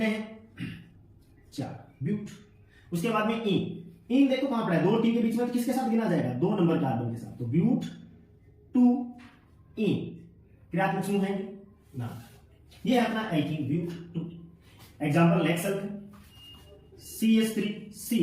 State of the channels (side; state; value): both; identical; correlation 1.00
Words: हैं? 4, ब्यूट। उसके बाद में इन देखो कहां पड़ा है? 2 टी के बीच में, तो किसके साथ गिना जाएगा? 2 नंबर कार्बन के साथ, तो ब्यूट 2 इन क्रियात्मक समूह है ना। ये है अपना alkene but 2। Example next CH3 C